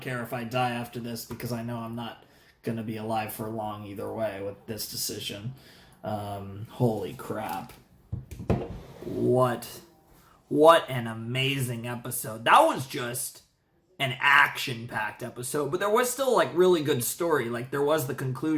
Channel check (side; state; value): both; identical; correlation 1.00